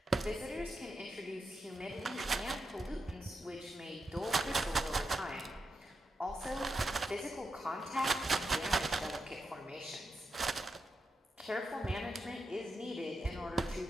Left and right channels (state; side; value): normal; both; correlation 0.86